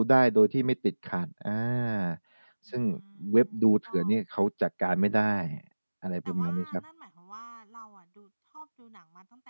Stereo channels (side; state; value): both; inverted; correlation -1.00